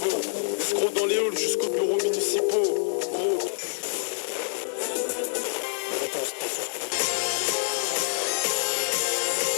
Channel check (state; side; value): silent; right; digital silence